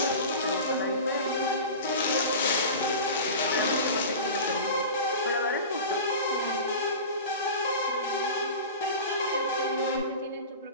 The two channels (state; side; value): inverted; both; correlation -0.32